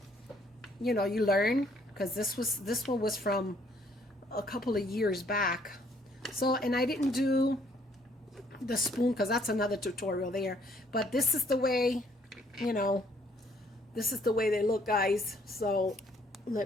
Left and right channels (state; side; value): normal; both; correlation 0.65